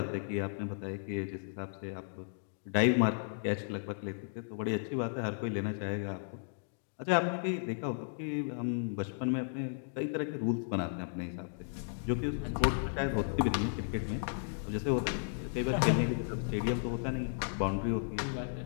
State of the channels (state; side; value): silent; right; digital silence